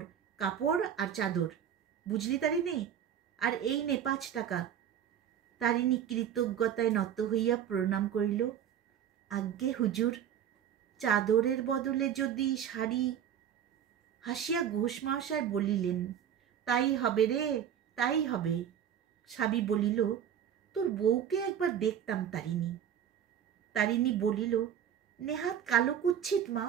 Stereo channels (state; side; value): quieter; left; 9.2 dB